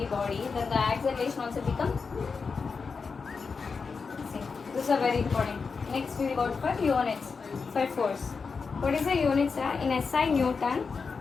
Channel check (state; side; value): quieter; right; 5.0 dB